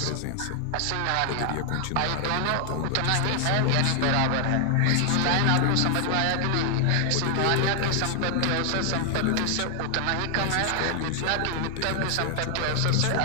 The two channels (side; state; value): both; different; correlation 0.00